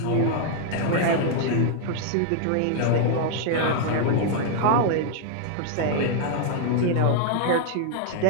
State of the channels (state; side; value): different; both; correlation 0.00